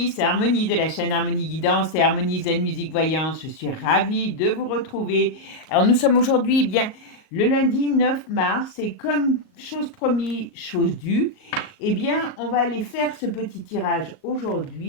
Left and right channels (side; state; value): right; late; 38 ms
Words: c'est Harmonie de la chaîne Harmonie Guidance et Harmonie Zen Musique Voyance. Je suis ravie de vous retrouver. Alors nous sommes aujourd'hui bien le lundi 9 mars et comme chose promis, chose due, eh bien on va aller faire ce petit tirage